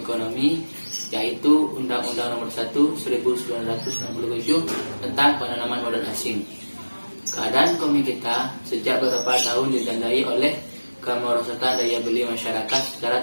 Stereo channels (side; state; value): both; inverted; correlation -1.00